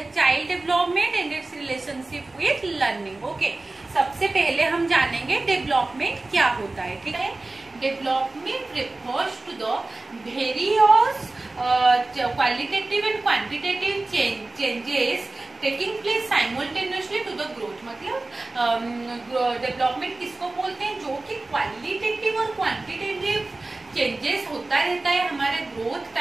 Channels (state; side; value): quieter; left; 3.1 dB